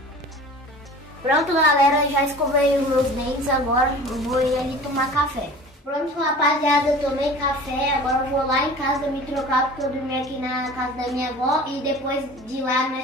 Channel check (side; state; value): both; normal; correlation 0.41